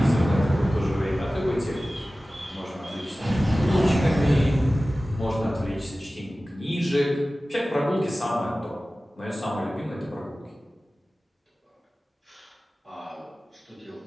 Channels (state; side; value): normal; both; correlation 0.96